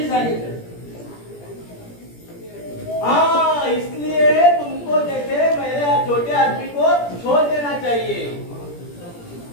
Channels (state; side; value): late; right; 17 ms